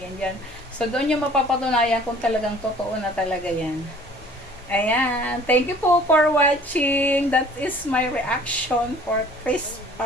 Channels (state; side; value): normal; both; correlation 0.51